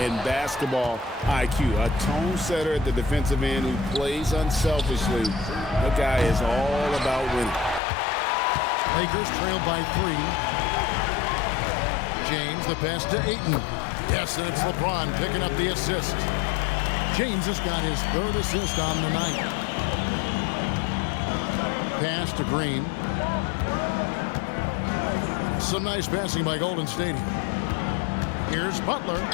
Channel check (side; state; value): right; drops out; at 7.8 s